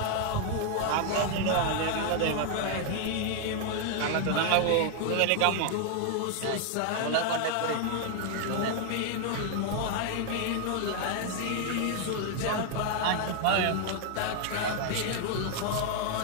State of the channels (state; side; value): different; both; correlation 0.00